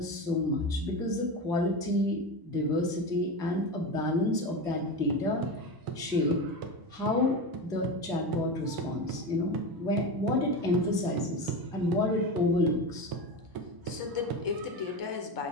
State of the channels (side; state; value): left; late; 1.0 ms